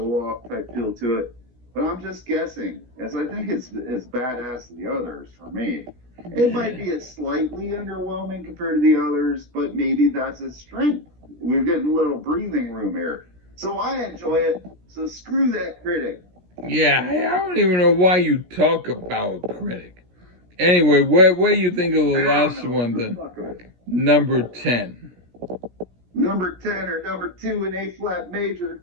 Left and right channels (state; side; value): late; left; 17 ms